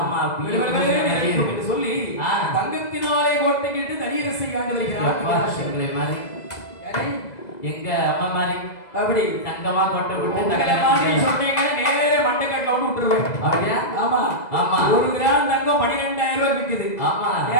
என்று சொல்லி தங்கத்தினாலே கோட்டைக்கிட்டு தனியரசை காண்டு வருகிறார். எங்களை மாதிரி எங்க அம்மா மாதிரி அப்படி தங்கமா கொட்டை விட்டு சொன்னீங்க நேர மண்டைக்கட்டில விட்டுருவேன். அப்படியா ஆமா ஆமா 1 கிராம் தங்கம் 12,000 ரூபாய் விற்குது. ஆமா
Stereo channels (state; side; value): late; right; 2.0 ms